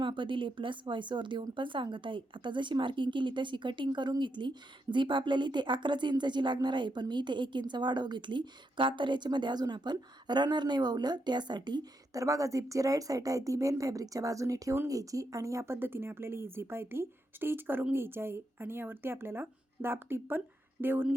दिले, प्लस व्हॉइसवर देऊन पण सांगत आहे. आता जशी मार्किंग केली तशी कटिंग करून घेतली. झीप आपल्याला इथे 11 इंचाची लागणार आहे, पण मी इथे 1 इंच वाढव घेतली का, तर याच्यामध्ये अजून आपण रनर नाही ववलं त्यासाठी. तर बघा, झीपची राईट साईड आहे ती मेन फॅब्रिकच्या बाजूने ठेवून घ्यायची आणि या पद्धतीने आपल्याला ही झीप आहे ती स्टिच करून घ्यायची आहे आणि यावरती आपल्याला दाब टीप पण देऊन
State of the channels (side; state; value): both; normal; correlation 0.82